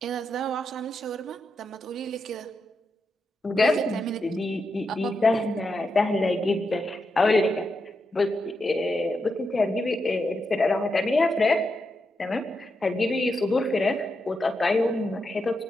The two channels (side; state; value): both; normal; correlation 0.85